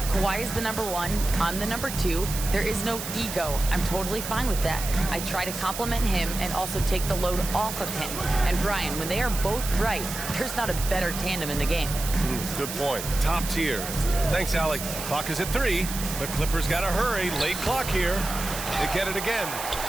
Kawhi is the number 1, I'm the number 2. There is no ego. I'm totally fine with that. I try to compliment him and also take the load off of him. And Brian, when they are both right, there's not a better tandem in the game. Good point. Top tier. Thanks, Allie. Clock is at 3. The Clippers got to hurry. Late clock here. They get it again.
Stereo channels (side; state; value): right; noise; hiss, 7 dB below the sound